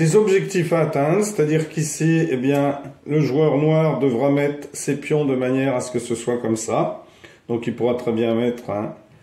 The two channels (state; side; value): identical; both; correlation 1.00